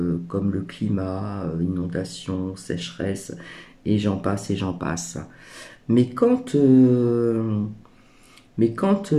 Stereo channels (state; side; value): identical; both; correlation 1.00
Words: comme le climat, inondation, sécheresse, et j'en passe et j'en passe. Mais quand